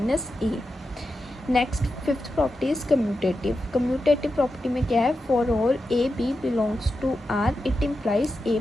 a. Next fifth property is commutative. Commutative property में क्या है? For all A b belongs to R it implies a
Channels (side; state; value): both; normal; correlation 0.89